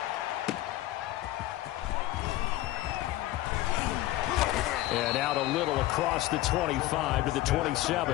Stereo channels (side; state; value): right; quieter; 15.9 dB